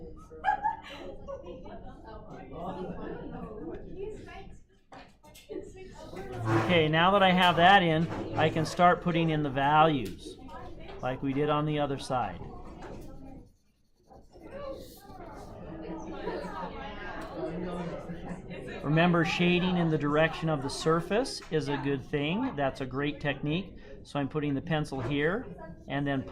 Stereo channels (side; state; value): both; identical; correlation 1.00